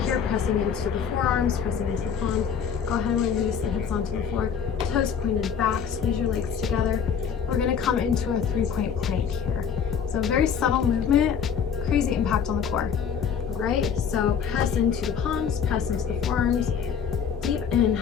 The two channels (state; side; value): quieter; right; 7.5 dB